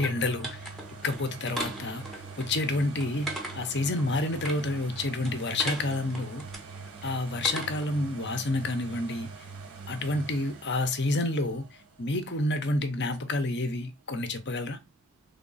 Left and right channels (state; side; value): normal; both; correlation 0.54